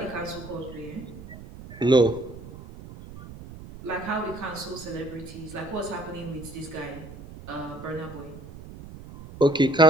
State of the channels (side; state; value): right; noise; rumble, 15 dB below the sound